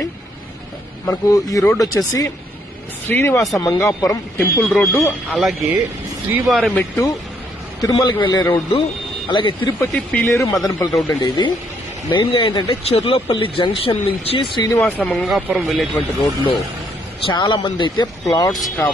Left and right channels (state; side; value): normal; both; correlation 0.70